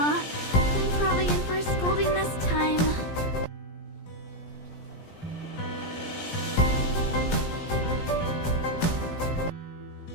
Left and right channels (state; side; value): late; right; 17 ms